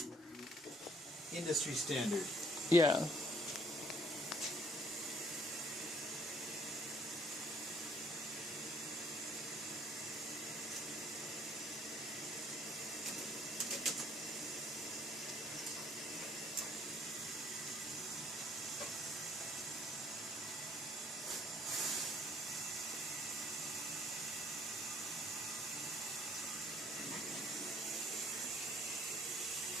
industry standard. Yeah.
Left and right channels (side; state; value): both; normal; correlation 0.61